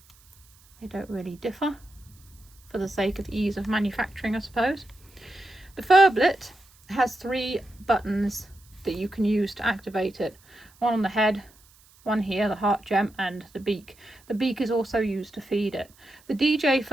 They don't really differ, for the sake of ease of manufacturing, I suppose. The Furblet has 3 buttons that you can use to activate it. One on the head, one here, the heart gem, and the beak. The beak is also used to feed it. The DJ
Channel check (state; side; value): noise; right; hiss, 28 dB below the sound